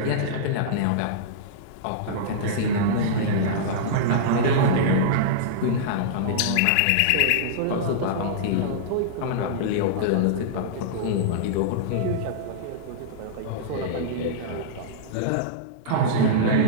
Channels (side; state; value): both; different; correlation -0.03